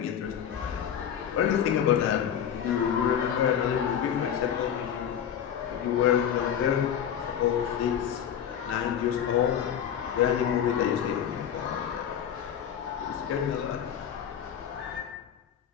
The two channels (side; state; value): right; quieter; 9.0 dB